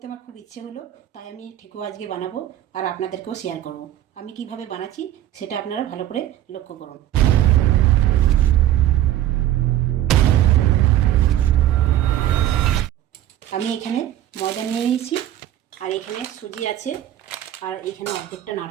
আমার খুব ইচ্ছে হলো, তাই আমি ঠেকুয়া আজকে বানাবো আর আপনাদেরকেও শেয়ার করব। আমি কিভাবে বানাচ্ছি সেটা আপনারা ভালো করে লক্ষ্য করুন। আমি এখানে ময়দা নিয়ে নিয়েছি, আর এখানে সুজি আছে, আর এখানে অর্ধেকটা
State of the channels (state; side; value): quieter; left; 12.7 dB